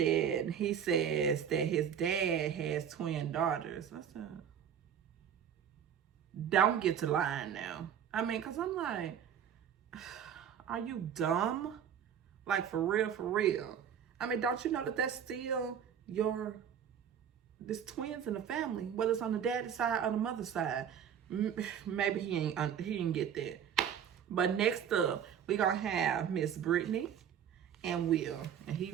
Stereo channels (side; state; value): left; quieter; 8.5 dB